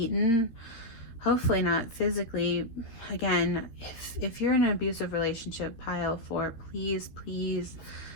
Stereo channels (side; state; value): right; late; 13 ms